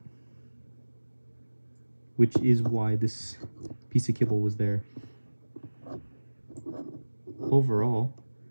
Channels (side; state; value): both; inverted; correlation -1.00